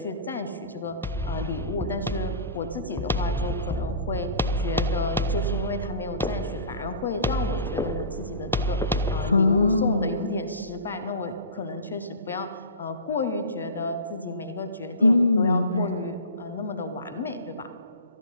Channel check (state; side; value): inverted; both; correlation -0.35